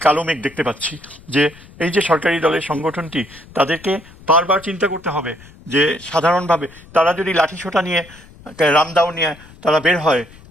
কালো মেঘ দেখতে পাচ্ছি যে এই যে সরকারি দলের সংগঠনটি, তাদেরকে বারবার চিন্তা করতে হবে যে সাধারণভাবে তারা যদি লাঠিসোঁটা নিয়ে রামদাও নিয়ে তারা বের হয়,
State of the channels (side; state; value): left; noise; rumble, 22 dB below the sound